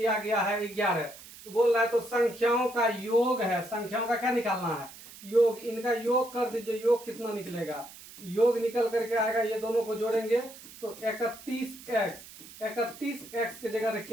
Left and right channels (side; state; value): right; noise; hiss, 17 dB below the sound